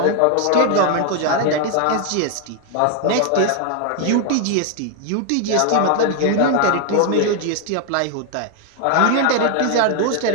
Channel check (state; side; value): different; both; correlation 0.00